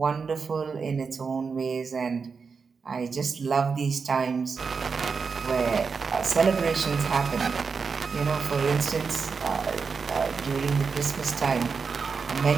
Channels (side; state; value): left; quieter; 5.3 dB